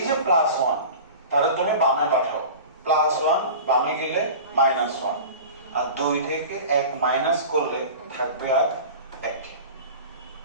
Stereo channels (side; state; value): both; inverted; correlation -0.36